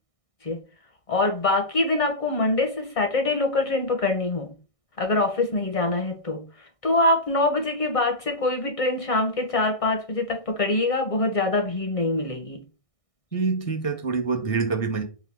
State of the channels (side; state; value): right; late; 1.6 ms